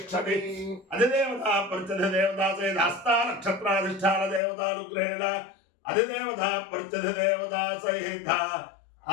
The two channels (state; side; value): drops out; right; at 4.4 s